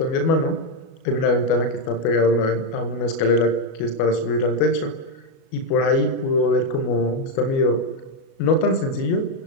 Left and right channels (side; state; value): right; late; 37 ms